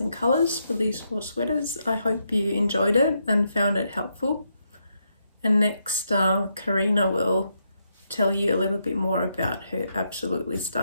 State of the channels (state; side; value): inverted; both; correlation -0.80